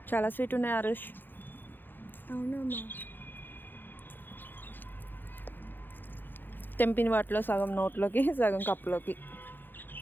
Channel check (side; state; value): right; late; 0.093 ms